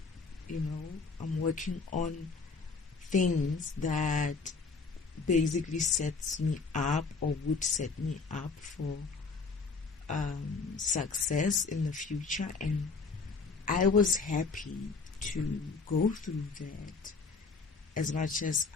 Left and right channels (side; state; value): right; quieter; 4.5 dB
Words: I'm working on things that basically sets me up or would set me up for success in the future, and I was happy to go through that. As much as